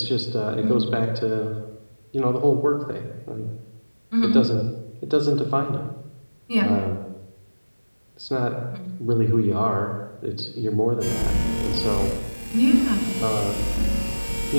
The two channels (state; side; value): inverted; both; correlation -1.00